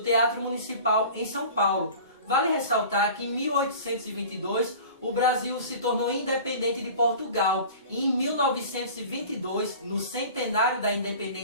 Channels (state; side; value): inverted; both; correlation -0.41